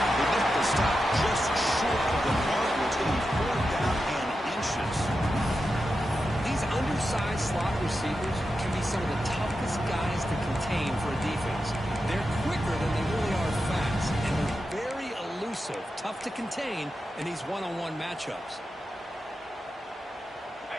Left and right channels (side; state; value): both; normal; correlation 0.89